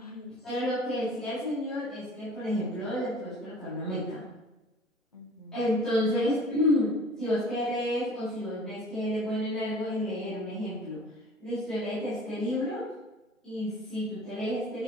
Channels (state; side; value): normal; both; correlation 0.46